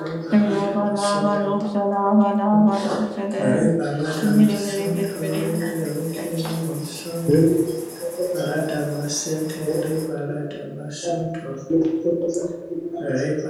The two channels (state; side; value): identical; both; correlation 1.00